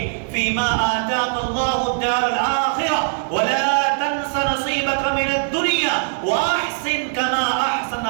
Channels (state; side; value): silent; left; 65 dB below the other